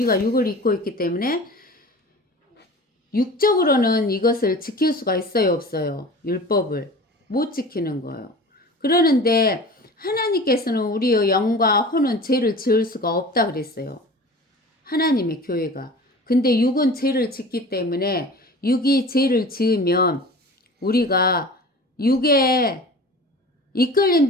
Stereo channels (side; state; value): both; normal; correlation 0.39